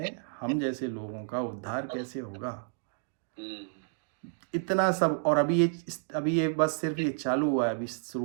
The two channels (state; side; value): silent; left; digital silence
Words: हम जैसे लोगों का उद्धार कैसे होगा। इतना सब, और अभी ये बस सिर्फ ये चालू हुआ है, अभी